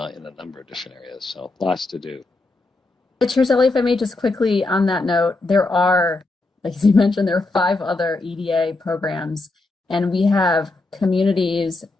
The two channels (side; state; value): right; quieter; 3.1 dB